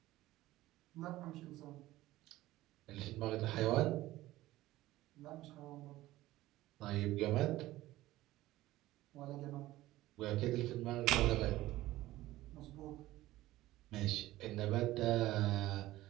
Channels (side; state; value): left; quieter; 16.5 dB